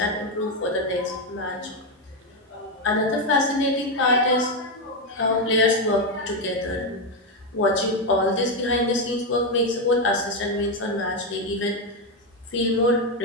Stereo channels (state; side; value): normal; both; correlation 0.07